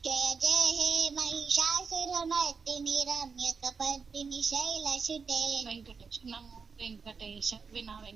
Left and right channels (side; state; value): left; quieter; 5.4 dB